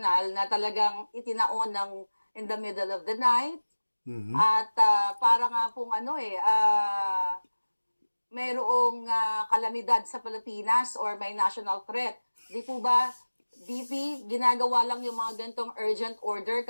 na talagang itinaon ng in the middle of the night. At para nga pong mayroong kalamidad sa Pilipinas or may national threat. Di po ba, DP, ginagawa lang yung mga ganitong urgent order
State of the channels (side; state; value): both; inverted; correlation -1.00